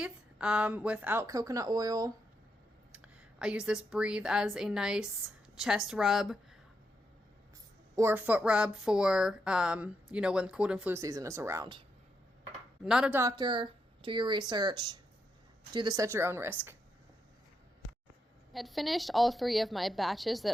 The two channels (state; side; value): normal; both; correlation 0.82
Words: without coconut oil. I use this Breathe as a nice chest rub or foot rub for, you know, when cold and flu season is around. I'm not a doctor. Do your research. Do this at your own risk. I had finished all 3 of my batches that